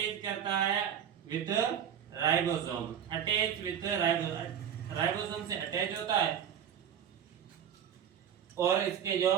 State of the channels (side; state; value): left; quieter; 8.9 dB